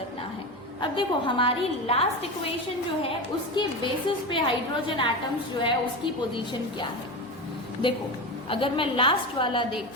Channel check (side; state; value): right; noise; hum, 29 dB below the sound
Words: है। अब देखो हमारी लास्ट इक्वेशन जो है उसके बेसिस पे हाइड्रोजन एटम्स जो है उसकी पोजीशन क्या है। देखो अगर मैं लास्ट वाला